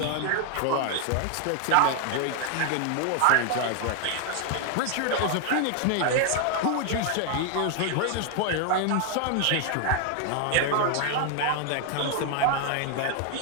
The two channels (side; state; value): both; different; correlation 0.00